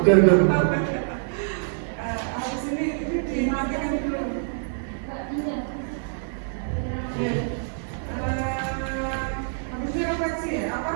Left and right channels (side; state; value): left; silent; digital silence